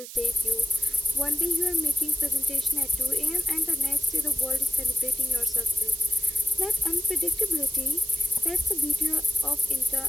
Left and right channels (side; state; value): right; noise; hiss, 12 dB below the sound